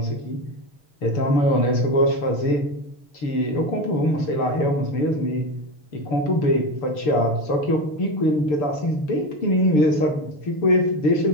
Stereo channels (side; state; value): right; late; 6.8 ms